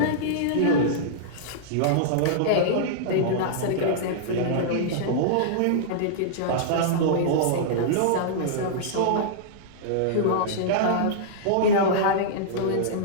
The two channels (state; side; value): different; both; correlation -0.02